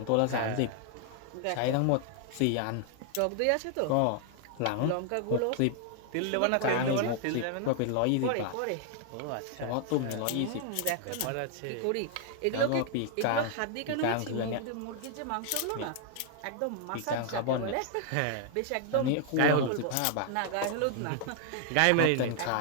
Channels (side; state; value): both; different; correlation 0.00